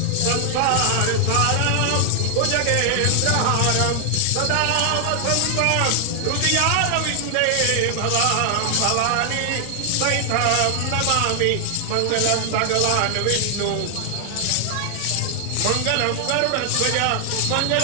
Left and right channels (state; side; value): different; both; correlation 0.00